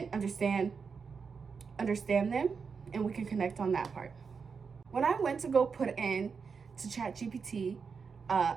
understand them, and we can connect on that part. When I went to go put in to ChatGPT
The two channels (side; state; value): left; quieter; 5.6 dB